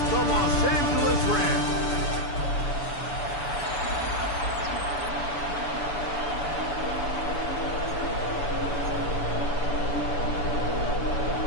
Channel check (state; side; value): late; right; 6.9 ms